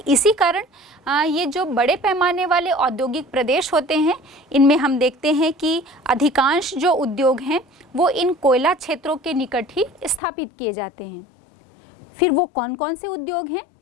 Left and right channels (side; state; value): right; drops out; at 10.2 s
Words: इसी कारण ये जो बड़े पैमाने वाले औद्योगिक प्रदेश होते हैं इनमें हम देखते हैं कि अधिकांश जो उद्योग हैं वो इन कोयला क्षेत्रों के निकट ही स्थापित किए जाते हैं। फिर वो कौन कौन से उद्योग हैं